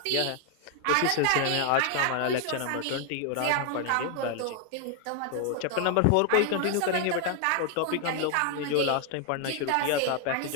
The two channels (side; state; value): both; different; correlation 0.00